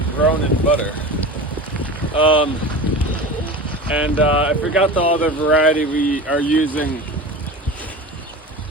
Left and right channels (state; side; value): normal; both; correlation 0.32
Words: grown in butter. I forgot the other variety we are using.